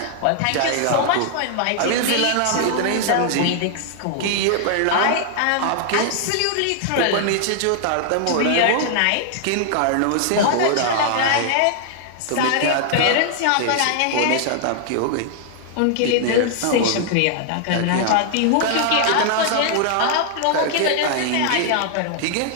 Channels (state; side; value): different; both; correlation 0.00